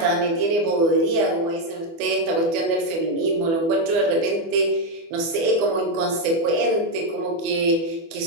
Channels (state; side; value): late; left; 24 ms